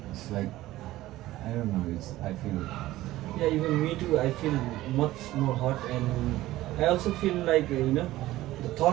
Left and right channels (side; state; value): left; quieter; 16.2 dB